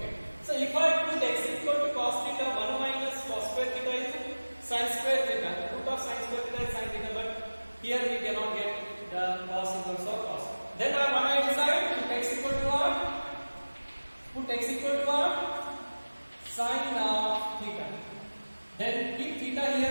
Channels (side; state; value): both; inverted; correlation -1.00